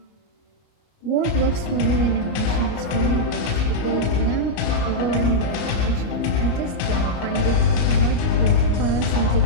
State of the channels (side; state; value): right; late; 34 ms